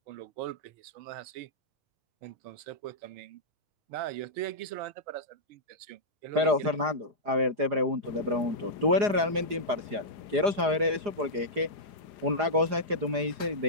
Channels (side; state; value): left; late; 4.9 ms